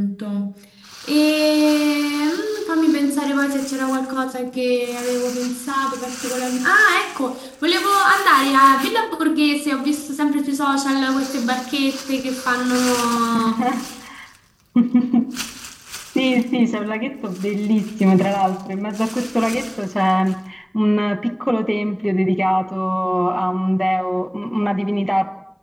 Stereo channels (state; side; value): identical; both; correlation 1.00